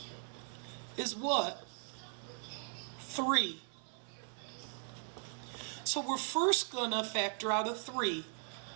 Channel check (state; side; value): silent; left; 52 dB below the other